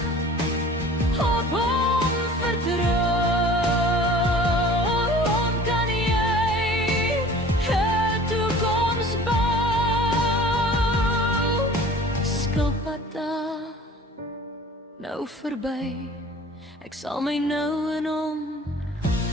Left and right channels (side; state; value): both; normal; correlation 0.46